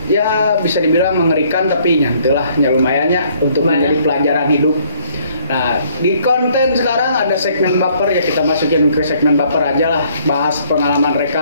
ya bisa dibilang mengerikan, tapi nyantelah lumayannya untuk menjadi pelajaran hidup. Nah, di konten sekarang ada segmen baper, ya kita masukin ke segmen baper aja lah. Bahas pengalaman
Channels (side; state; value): both; inverted; correlation -0.64